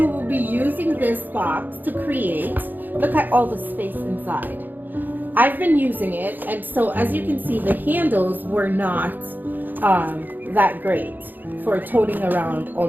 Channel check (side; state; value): left; late; 0.088 ms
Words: will be using this box to create, look at all the space inside. I've been using it, and so as you can see, the handles were not that great for toting around all